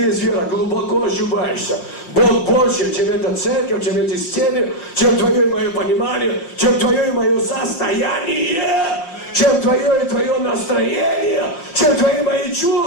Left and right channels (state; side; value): late; right; 5.7 ms